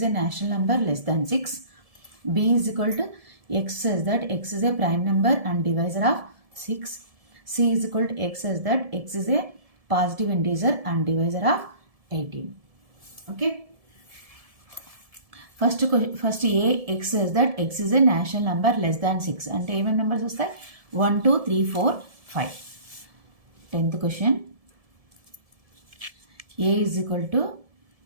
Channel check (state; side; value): late; left; 1.7 ms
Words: a natural number less than 6, b is equal to x such that x is a prime number and divisor of 6, c is equal to x such that x is a positive integer and divisor of 18. Okay, first a x such that x is a natural number less than 6 అంటే ఏమేమి నెంబర్స్ వస్తాయి? 1, 2, 3, 4, 5. 10th question a is equal to